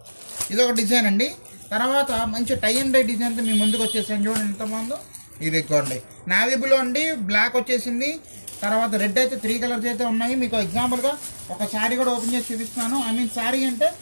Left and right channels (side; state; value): both; inverted; correlation -1.00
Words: ఇదొక డిజైన్ అండి. తర్వాత మంచి టై అండ్ డై డిజైన్తో మీ ముందుకు వచ్చేసాను. చూడండి ఎంత బాగుందో. ఇదిగోండి, నావీ బ్లూ అండి, బ్లాక్ వచ్చేసింది. తర్వాత రెడ్ అయితే 3 కలర్స్ అయితే ఉన్నాయి. మీకు ఎగ్జాంపుల్గా ఒక శారీ కూడా ఓపెన్ చేసి చూపిస్తున్నాను. ఐ మీన్ శారీ అంటే